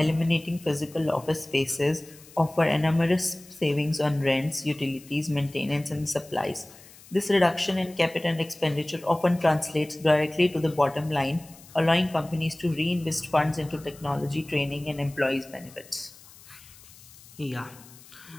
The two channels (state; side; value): noise; left; hiss, 22 dB below the sound